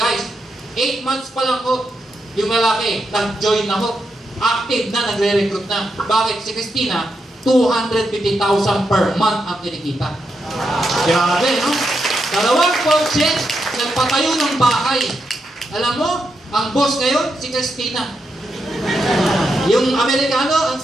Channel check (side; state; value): both; normal; correlation 0.84